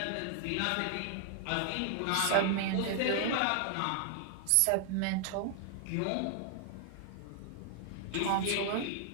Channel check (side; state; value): both; different; correlation 0.00